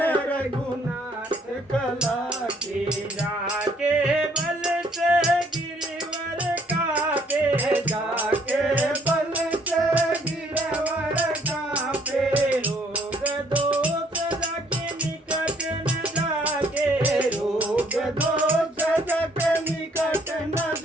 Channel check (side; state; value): both; normal; correlation 0.64